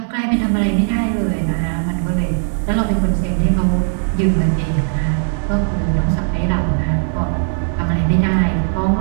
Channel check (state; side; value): silent; left; digital silence